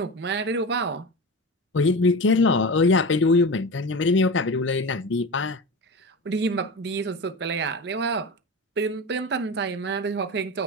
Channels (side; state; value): both; normal; correlation 0.27